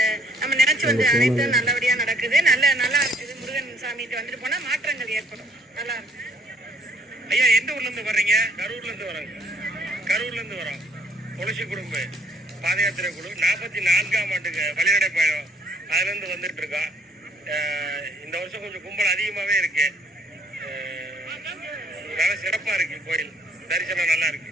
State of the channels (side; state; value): both; normal; correlation 0.62